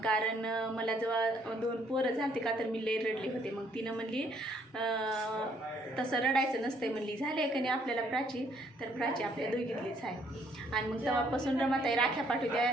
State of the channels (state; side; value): normal; both; correlation 0.66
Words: कारण मला जेव्हा 2 पोरं झालते का तर मी लई रडले होते. मग तिनं म्हणली तसं रडायचं नसतं म्हणली. झाले का नाही आपल्याला प्राची, तर प्राची आपल्या दोघीतलीच आहे. आणि मग तेव्हापासून रमाताई राख्या पाठवते